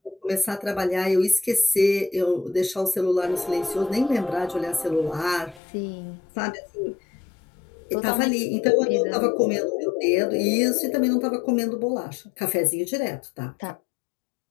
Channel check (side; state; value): right; drops out; at 5.6 s